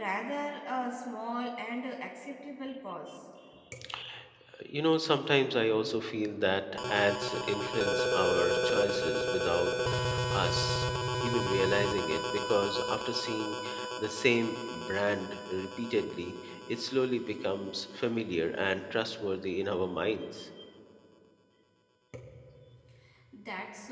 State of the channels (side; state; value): both; identical; correlation 1.00